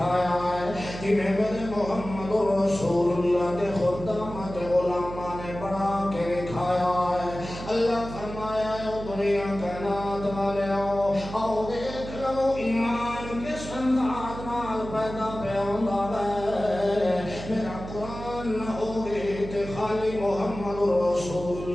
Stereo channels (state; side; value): noise; right; hum, 10 dB below the sound